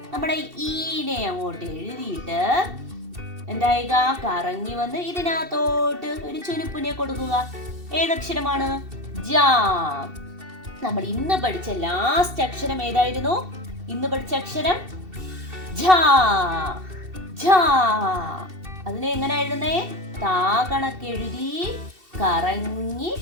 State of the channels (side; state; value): left; late; 2.7 ms